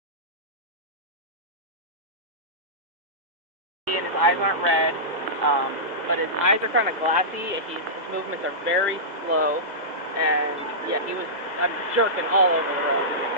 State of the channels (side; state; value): left; late; 2.0 ms